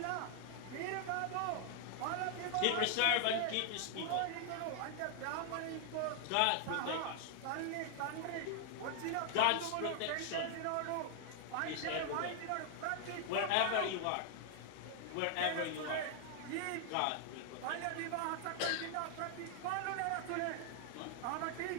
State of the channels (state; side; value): different; both; correlation 0.00